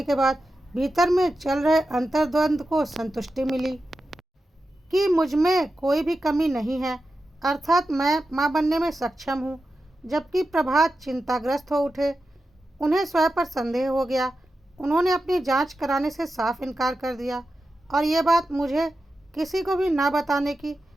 के बाद भीतर में चल रहे अंतर्द्वंद को संतुष्टि मिली कि मुझ में कोई भी कमी नहीं है, अर्थात मैं मां बनने में सक्षम हूँ। जबकि प्रभात चिंताग्रस्त हो उठे। उन्हें स्वयं पर संदेह हो गया। उन्होंने अपनी जांच कराने से साफ इनकार कर दिया और ये बात मुझे किसी को भी ना बताने की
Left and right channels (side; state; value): both; normal; correlation 0.91